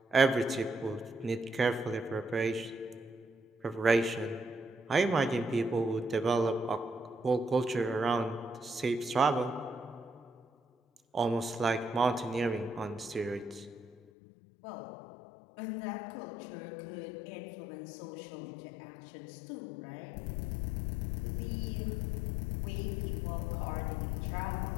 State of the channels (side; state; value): right; drops out; at 14.0 s